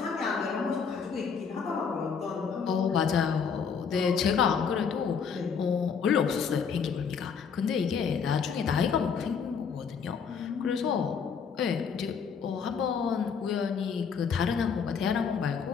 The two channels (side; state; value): right; quieter; 6.3 dB